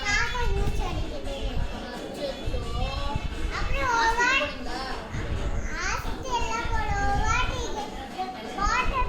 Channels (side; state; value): both; identical; correlation 1.00